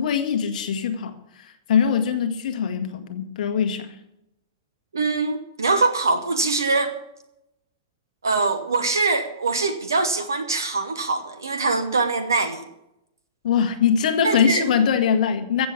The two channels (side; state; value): both; inverted; correlation -0.54